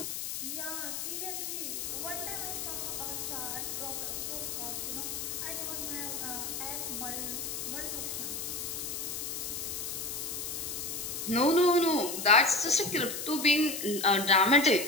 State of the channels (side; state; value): left; noise; hiss, 4 dB below the sound